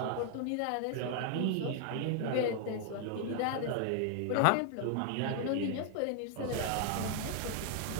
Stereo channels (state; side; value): different; both; correlation 0.00